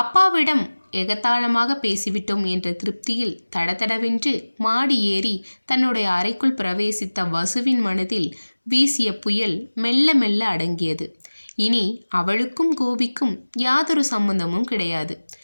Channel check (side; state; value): both; inverted; correlation -1.00